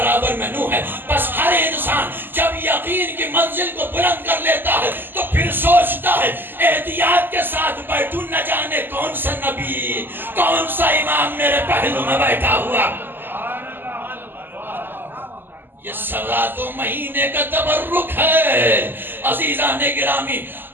میں نوح ہے. بس ہر انسان جب یقین کی منزل کو بلند کر لیتا ہے تو پھر سوچتا ہے احتیاط کے ساتھ بیٹھوں، نہ جانے کون سا نبی، کون سا امام میرے پہلو میں بیٹھا ہوا. یہ 2.25 مہینے کا تبرک ہے. عزیزان گرامی،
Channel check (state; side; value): late; left; 0.094 ms